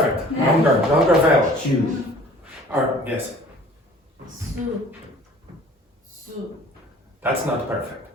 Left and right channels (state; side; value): normal; both; correlation 0.49